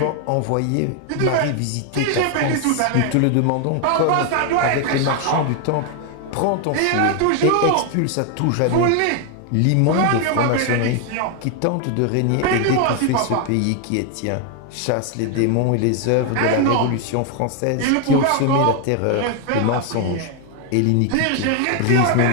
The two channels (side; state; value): both; different; correlation 0.01